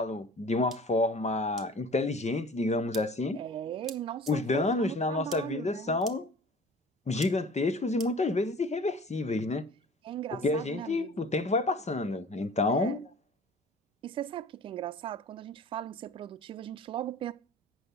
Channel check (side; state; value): both; normal; correlation 0.45